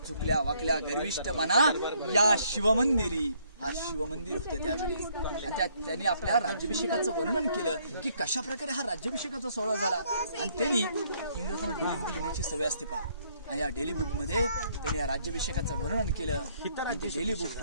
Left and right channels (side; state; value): both; inverted; correlation -0.67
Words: झुकल्या वाकल्या गर्विष्ठ मना या शिवमंदिरी. हा शिवमंदिर होतं त्यावेळेस. आणि त्यांनी आपल्या राज्याभिषेकाचं वर्णन केलं की कशा प्रकारे हा राज्याभिषेकाचा सोहळा झाला. आणि त्यांनी इंग्रजांना डेली बुक लिहिण्याची सवय असते पहा. आणि या डेली बुक मध्ये त्यांनी या राज्याभिषेकाचं वर्णन केलं. आणि ते डेली बुक